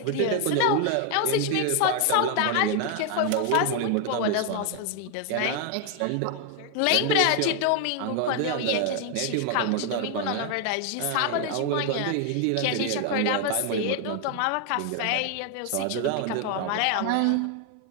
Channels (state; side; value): different; both; correlation 0.01